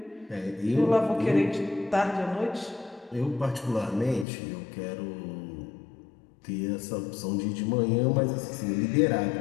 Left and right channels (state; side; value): drops out; right; at 4.2 s